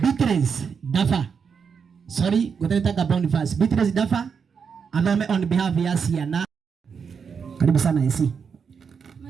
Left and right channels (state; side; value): quieter; left; 6.3 dB